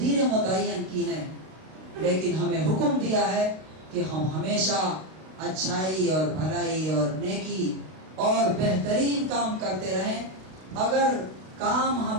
متعین کی ہیں، لیکن ہمیں حکم دیا ہے کہ ہم ہمیشہ اچھائی اور بھلائی اور نیکی اور بہترین کام کرتے رہیں. اگر کام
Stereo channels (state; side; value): late; left; 32 ms